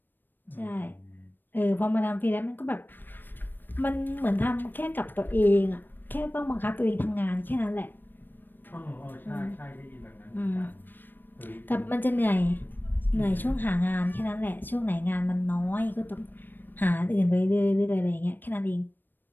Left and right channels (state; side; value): late; right; 0.093 ms